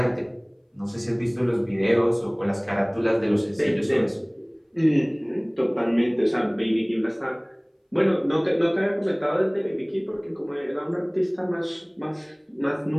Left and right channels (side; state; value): both; identical; correlation 1.00